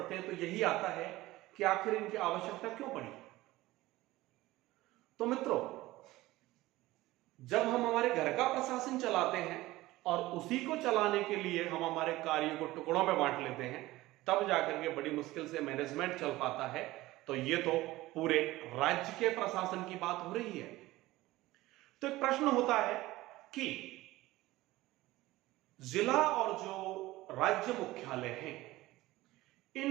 हैं तो यही आता है कि आखिर इनकी आवश्यकता क्यों पड़ी। तो मित्रों, जब हम हमारे घर का प्रशासन चलाते हैं और उसी को चलाने के लिए हम हमारे कार्यों को टुकड़ों में बांट लेते हैं, तब जाकर के बड़ी मुश्किल से मैनेजमेंट चल पाता है। तो ये तो पूरे राज्य के प्रशासन की बात हो रही है। तो एक प्रश्न होता है कि जिला और जो राज्य मुख्यालय हैं,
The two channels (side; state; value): left; quieter; 18.0 dB